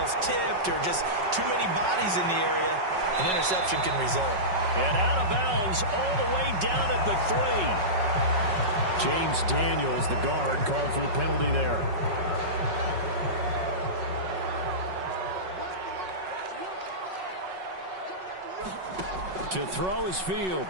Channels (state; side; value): late; left; 5.4 ms